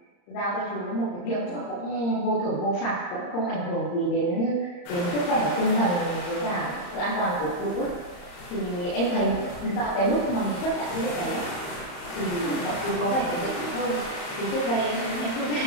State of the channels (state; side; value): late; right; 35 ms